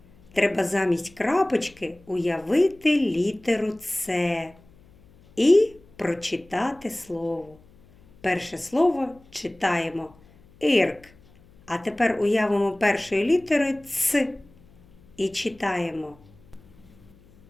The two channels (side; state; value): left; noise; hum, 27 dB below the sound